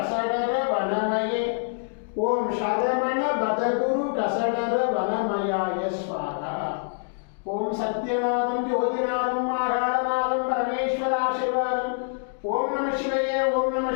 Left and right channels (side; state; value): right; silent; digital silence